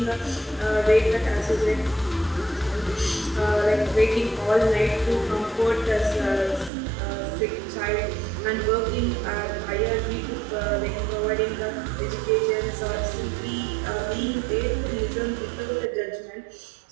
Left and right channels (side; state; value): left; drops out; at 6.7 s